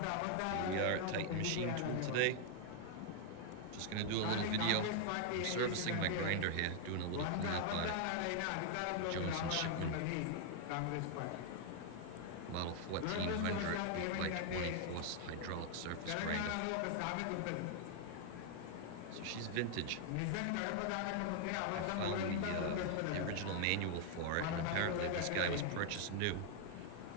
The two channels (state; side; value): different; both; correlation 0.00